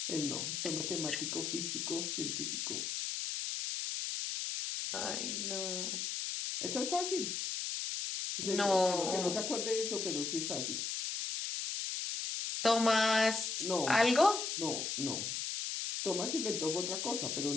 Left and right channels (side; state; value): left; noise; hiss, 2 dB below the sound